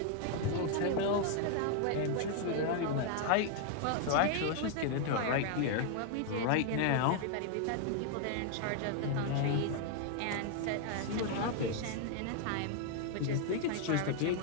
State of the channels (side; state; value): both; different; correlation 0.00